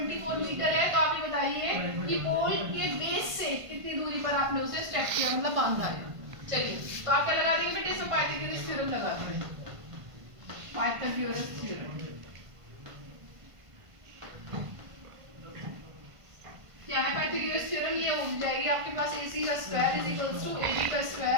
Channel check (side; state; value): left; late; 1.5 ms